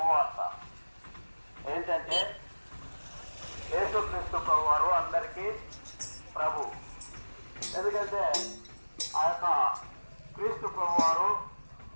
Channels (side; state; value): both; inverted; correlation -1.00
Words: ఏంటంటే, యేసుక్రీస్తు ప్రభువారు అందరికీ ప్రభు. ఎందుకంటే ఆ యొక్క క్రీస్తు ప్రభువారు